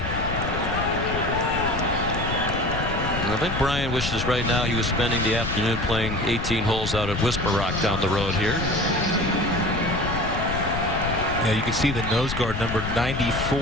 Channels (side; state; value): left; noise; rumble, 5 dB below the sound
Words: I think Brian wishes right now he was spending the afternoon playing 18 holes out at Whisper Rock down the road here. Yeah, you can see the nose guard number